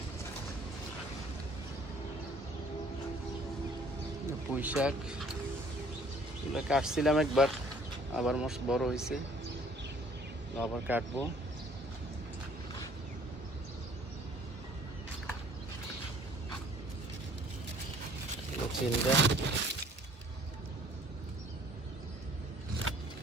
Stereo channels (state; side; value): normal; both; correlation 0.57